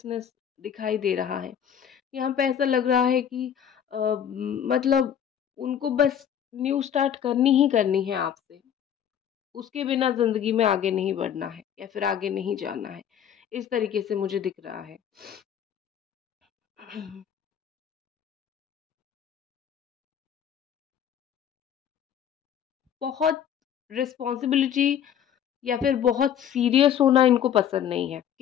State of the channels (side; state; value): right; quieter; 9.2 dB